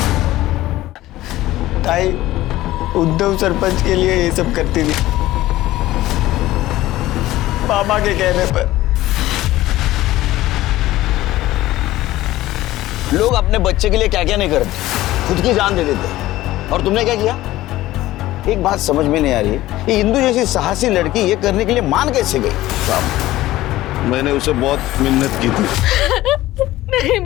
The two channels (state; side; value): quieter; right; 16.1 dB